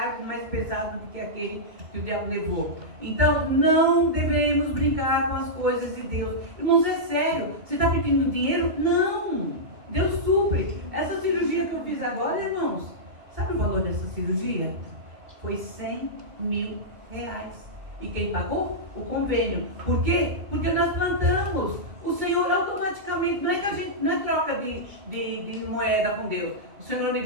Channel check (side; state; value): left; late; 2.7 ms